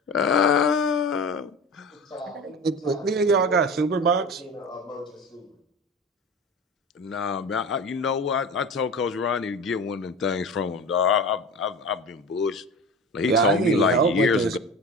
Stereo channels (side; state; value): both; normal; correlation 0.32